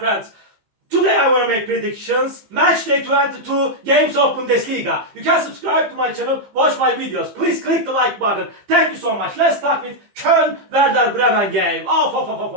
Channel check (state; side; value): late; left; 15 ms